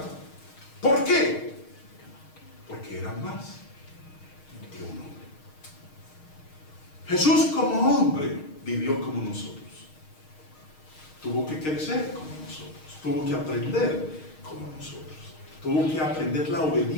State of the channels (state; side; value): late; right; 6.4 ms